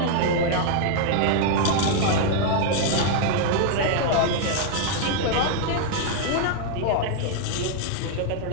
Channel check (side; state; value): both; different; correlation 0.00